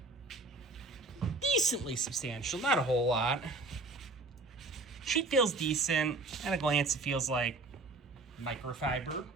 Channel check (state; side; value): quieter; left; 3.3 dB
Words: Decently substantial, not a whole lot. Sheet feels decent. At a glance, it feels like microfiber,